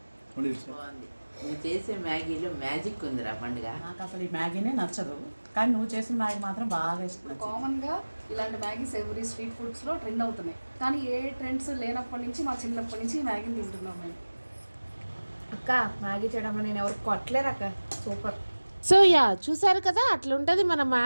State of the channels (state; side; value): inverted; both; correlation -1.00